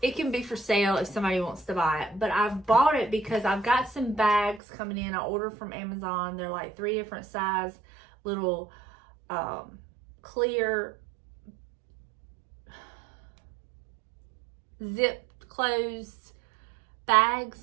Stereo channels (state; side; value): drops out; left; at 4.6 s